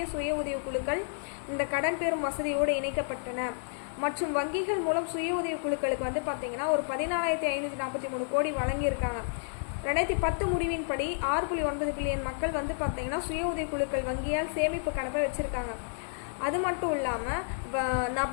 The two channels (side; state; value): right; silent; digital silence